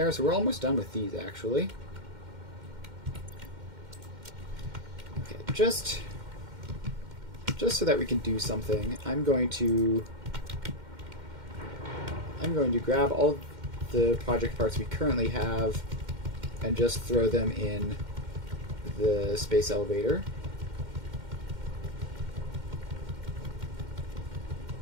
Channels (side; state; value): left; late; 2.1 ms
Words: so we're almost done with these, actually. Okay, just so that we can do something, I'm going to grab all the project parts we currently have and just throw them in the space elevator.